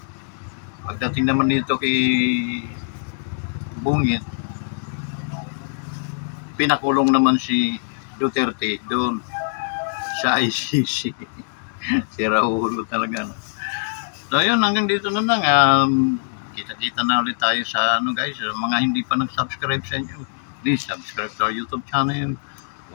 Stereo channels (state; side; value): silent; right; digital silence